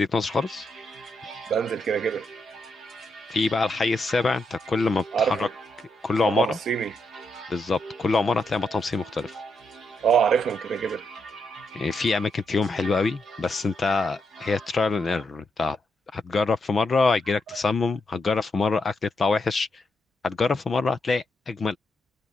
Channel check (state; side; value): normal; both; correlation 0.81